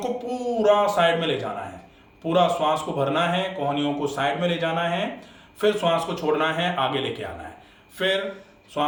पूरा साइड में ले जाना है। पूरा श्वास को भरना है, कोहनियों को साइड में ले जाना है, फिर श्वास को छोड़ना है, आगे लेके आना है। फिर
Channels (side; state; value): both; identical; correlation 1.00